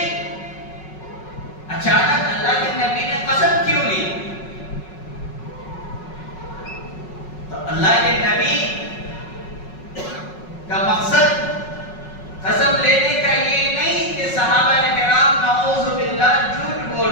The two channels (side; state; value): right; late; 5.4 ms